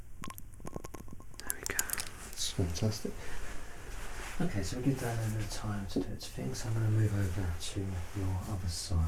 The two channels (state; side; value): identical; both; correlation 1.00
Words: There we go. That's fantastic. Okay, so we give that a bit of time to do its thing, so I'm going to move over to your other side,